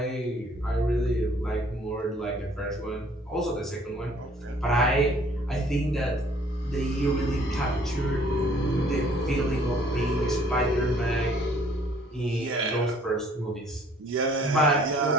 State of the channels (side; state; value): both; normal; correlation 0.58